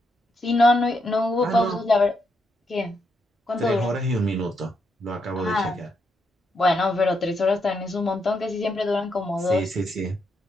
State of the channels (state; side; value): normal; both; correlation 0.80